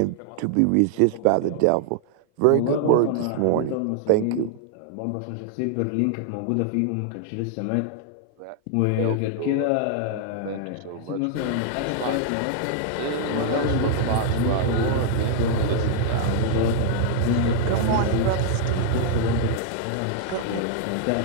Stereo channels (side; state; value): both; different; correlation 0.00